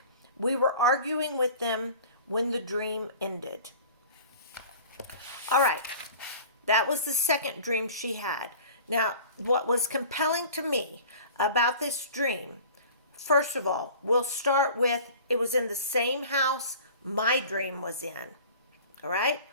We were arguing with them when the dream ended. All right, that was the second dream she had. Now, what was compelling to me about this dream, first of all, we'll start with, it was in the same house my dream was in. All right?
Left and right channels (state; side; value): inverted; both; correlation -0.43